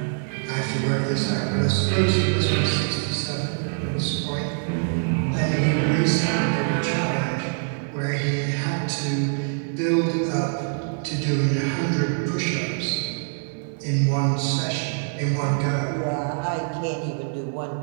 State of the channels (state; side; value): silent; left; 62 dB below the other